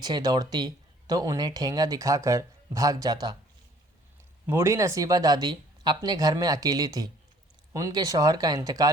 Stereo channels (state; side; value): normal; both; correlation 0.57